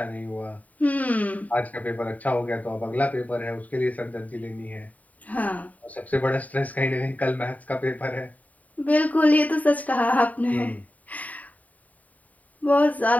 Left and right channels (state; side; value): late; right; 0.072 ms